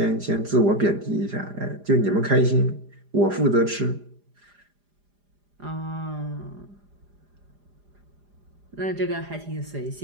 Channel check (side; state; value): left; late; 4.9 ms